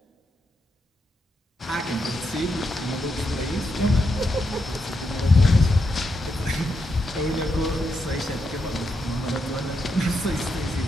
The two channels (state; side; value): normal; both; correlation 0.83